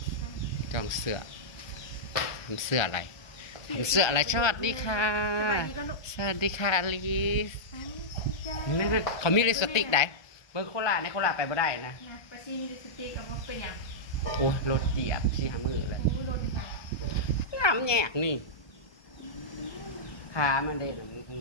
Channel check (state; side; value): late; right; 1.2 ms